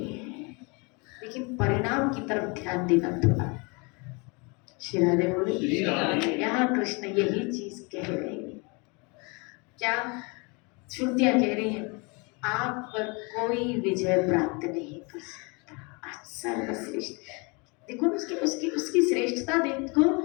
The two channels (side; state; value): right; quieter; 30.0 dB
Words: हैं, लेकिन परिणाम की तरफ ध्यान देना थोड़ा। श्री राधे बोले यहाँ कृष्ण यही चीज कह रहे हैं। क्या श्रुतियां कह रही हैं, आप पर कोई विजय प्राप्त नहीं कर सकता, आप सर्वश्रेष्ठ। देखो उसकी श्रेष्ठता देखो।